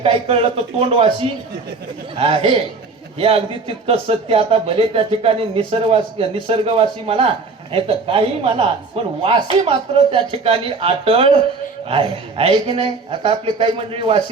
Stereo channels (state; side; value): quieter; left; 4.1 dB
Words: कळलं तर तोंडवासी आहे. हे अगदी तितकं सत्य. आता भले त्या ठिकाणी निसर्गवासी म्हणा नाही तर काही म्हणा पण वासी मात्र त्या ठिकाणी अटळ आहे की नाही. आता आपले काही मंडळी